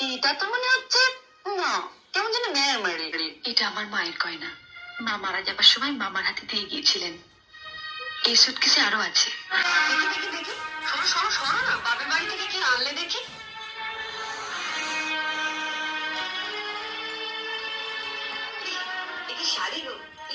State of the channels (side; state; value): both; identical; correlation 1.00